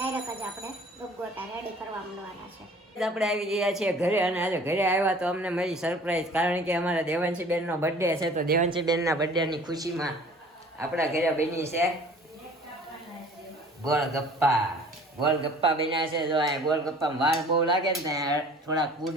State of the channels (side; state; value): both; normal; correlation 0.49